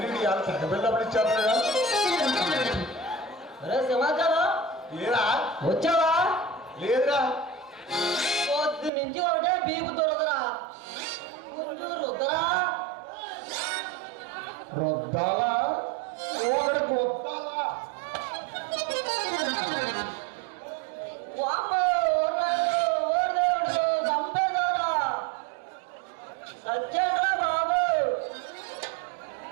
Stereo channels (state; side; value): drops out; left; at 8.9 s